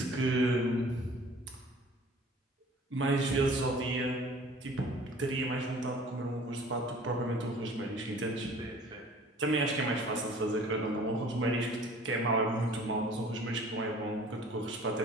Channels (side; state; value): both; normal; correlation 0.48